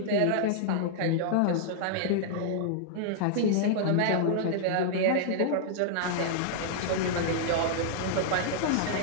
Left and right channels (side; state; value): both; different; correlation -0.01